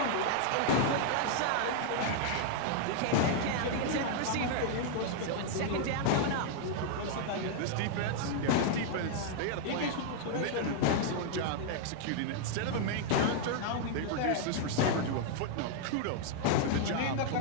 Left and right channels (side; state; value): both; different; correlation 0.00